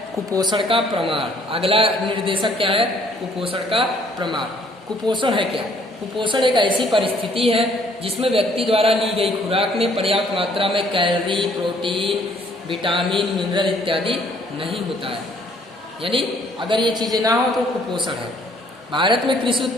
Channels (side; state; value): both; normal; correlation 0.62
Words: कुपोषण का प्रमाण। अगला निर्देशक क्या है? कुपोषण का प्रमाण। कुपोषण है क्या? कुपोषण एक ऐसी परिस्थिति है जिसमें व्यक्ति द्वारा ली गई खुराक में पर्याप्त मात्रा में कैलोरी, प्रोटीन, विटामिन, मिनरल इत्यादि नहीं होता है। यानी अगर ये चीज़ें ना हो तो कुपोषण है। भारत में कृषि